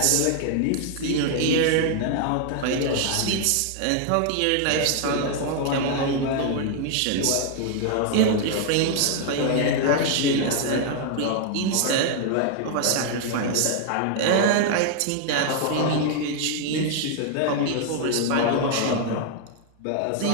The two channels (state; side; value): different; both; correlation 0.00